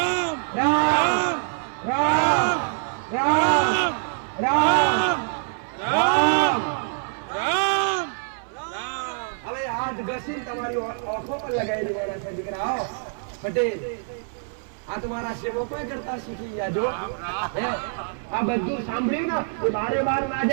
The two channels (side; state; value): left; silent; 62 dB below the other